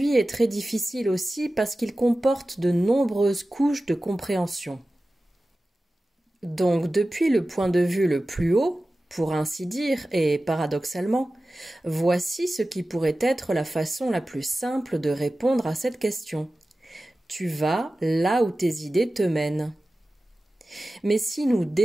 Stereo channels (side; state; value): both; normal; correlation 0.95